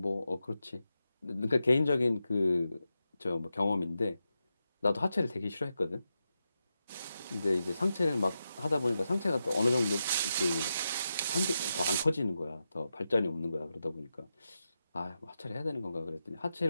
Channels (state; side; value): inverted; both; correlation -0.88